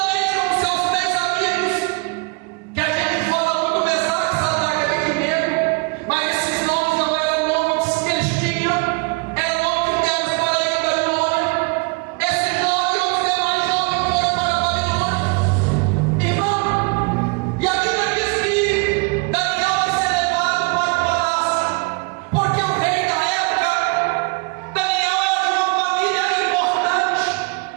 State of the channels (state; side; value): quieter; left; 31.1 dB